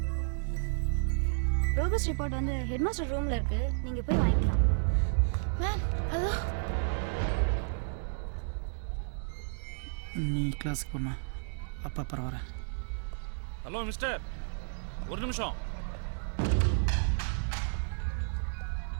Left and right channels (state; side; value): silent; left; digital silence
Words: ப்ரோக்ரஸ் ரிப்போர்ட் வந்து ஹெட்மாஸ்டர் ரூம்ல இருக்கு, நீங்க போய் வாங்கிக்கலாம். Ma'am hello. நீ கிளாஸுக்கு போமா, அப்பா அப்புறம் வரேன். ஹலோ மிஸ்டர், ஒரு நிமிஷம்.